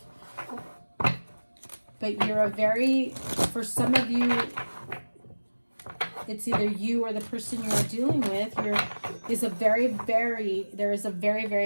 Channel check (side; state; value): both; inverted; correlation -1.00